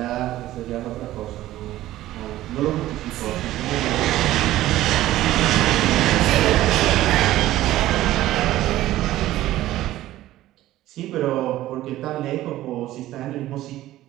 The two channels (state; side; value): quieter; left; 15.0 dB